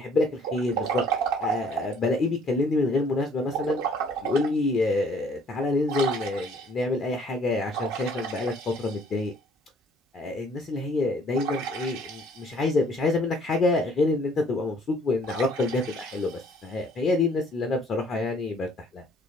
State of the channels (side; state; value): both; normal; correlation 0.59